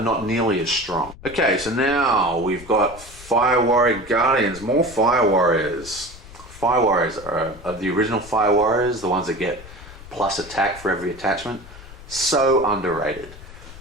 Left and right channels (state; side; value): noise; left; rumble, 17 dB below the sound